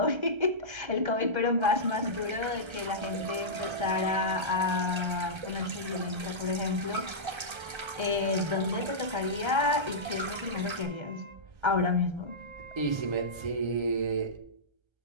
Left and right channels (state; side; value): late; left; 1.3 ms